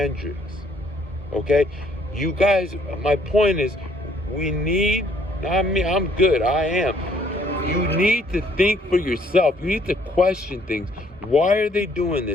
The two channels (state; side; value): normal; both; correlation 0.64